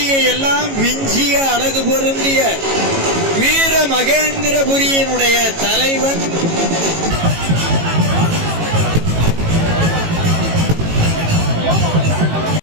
எல்லாம் விஞ்சிய அழகு பொருந்திய வீர மகேந்திரபுரியினுடைய தலைவன்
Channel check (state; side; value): late; left; 18 ms